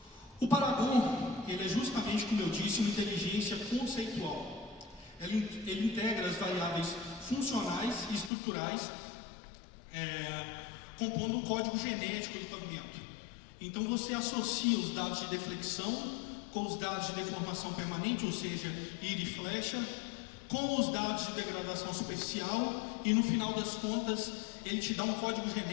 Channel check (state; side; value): drops out; right; at 8.3 s